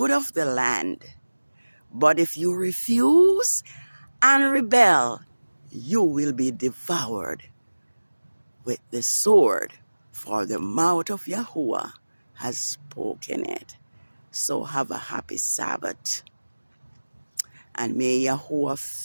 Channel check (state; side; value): inverted; both; correlation -1.00